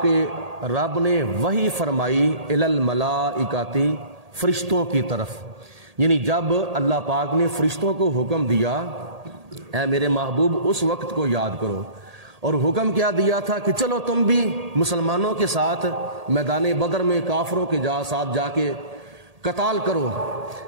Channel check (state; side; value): late; left; 1.8 ms